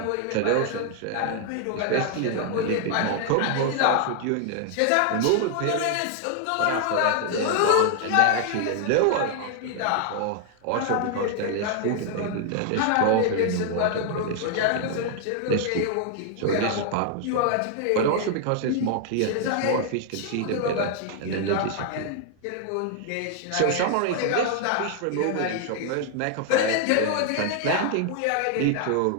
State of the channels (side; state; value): both; different; correlation 0.00